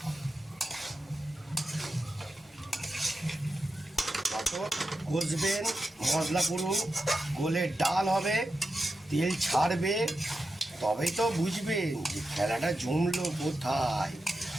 কষবেন, মশলা পুরো গলে ডাল হবে, তেল ছাড়বে, তবেই তো বুঝবেন যে খেলাটা জমলো কোথায়,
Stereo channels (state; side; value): normal; both; correlation 0.90